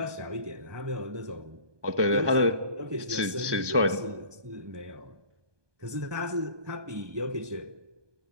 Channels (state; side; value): late; left; 1.2 ms